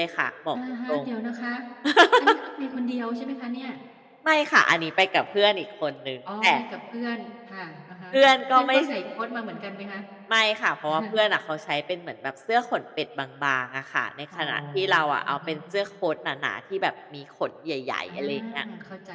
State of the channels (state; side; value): identical; both; correlation 1.00